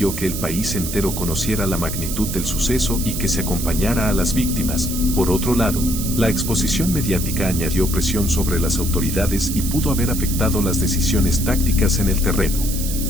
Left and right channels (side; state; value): right; noise; hiss, 6 dB below the sound